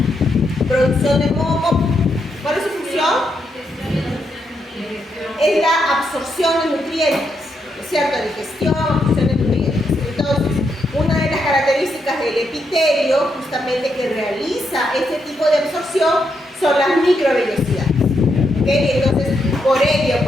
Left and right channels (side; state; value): both; normal; correlation 0.80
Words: Producción de moco. ¿Cuál es su función? Es la absorción de nutrientes, ¿no es cierto? Digestión, absorción de nutrientes. Entonces, una de las características del epitelio, justamente que realiza este tipo de absorción, son las microvellosidades. ¿Okay? Entonces, por ello,